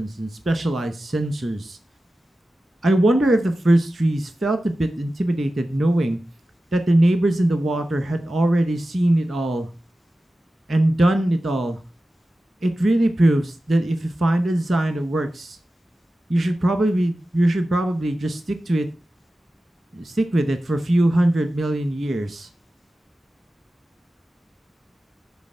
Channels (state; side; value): normal; both; correlation 0.94